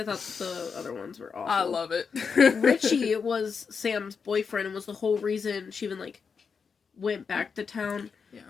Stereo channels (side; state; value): right; quieter; 5.8 dB